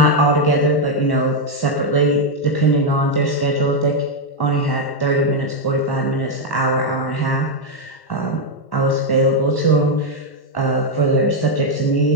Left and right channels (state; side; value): late; right; 1.1 ms